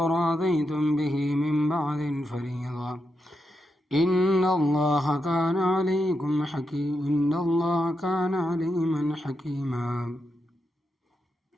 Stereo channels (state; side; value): normal; both; correlation 0.85